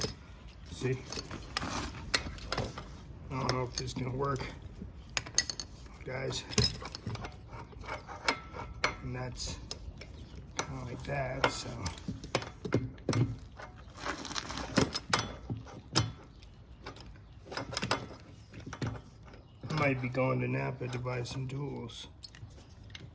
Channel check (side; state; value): both; identical; correlation 1.00